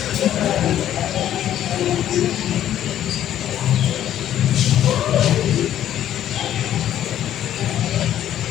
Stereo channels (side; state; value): right; quieter; 11.4 dB